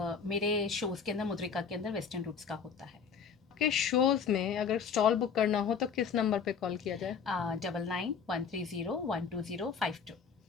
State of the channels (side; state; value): right; quieter; 6.4 dB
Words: मेरे शोज़ के अंदर, मुद्रिका के अंदर वेस्टर्न रूट्स का होता है। आपके शोज में अगर स्टॉल बुक करना हो तो किस नंबर पे कॉल किया जाए? 9913012052।